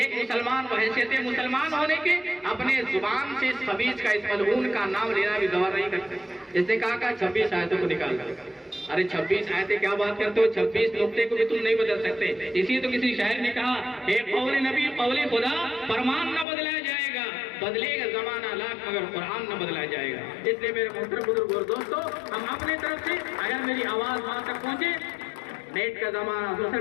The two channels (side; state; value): right; drops out; at 16.4 s